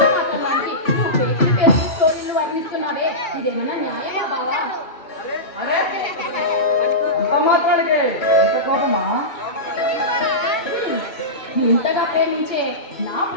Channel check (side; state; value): right; late; 2.2 ms